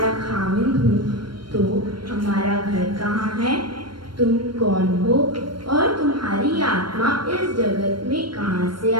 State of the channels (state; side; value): late; left; 0.72 ms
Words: खामिद हूँ तो हमारा घर कहाँ है? तुम कौन हो और तुम्हारी आत्मा इस जगत में कहाँ से